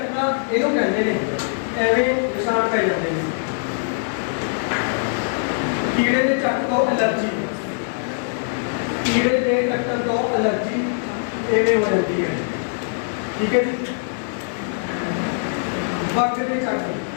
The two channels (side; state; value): right; silent; digital silence